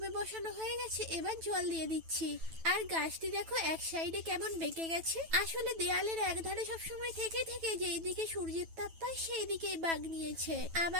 বসানো হয়ে গেছে, এবার জল দিয়ে দিচ্ছি। আর গাছটি দেখো এক সাইডে কেমন বেঁকে গেছে। আসলে দেয়ালের এক ধারে সবসময় থেকে থেকে যেই দিকে সূর্যের তাপ পায় সেই দিকেই বাগ নিয়েছে।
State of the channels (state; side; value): late; left; 9.1 ms